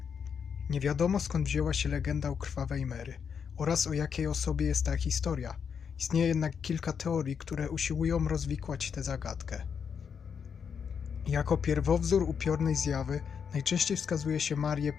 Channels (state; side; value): quieter; right; 6.9 dB